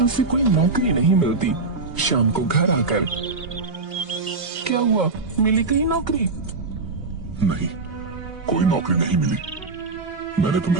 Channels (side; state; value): left; quieter; 3.8 dB